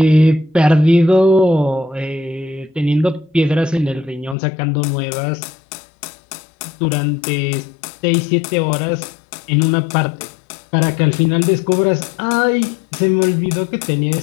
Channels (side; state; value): right; drops out; at 4.4 s